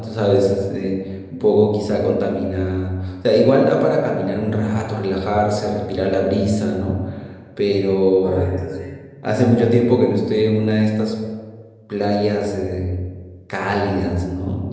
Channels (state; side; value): identical; both; correlation 1.00